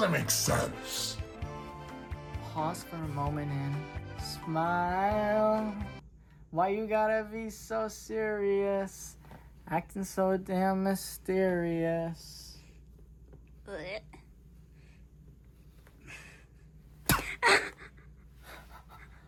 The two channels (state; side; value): identical; both; correlation 1.00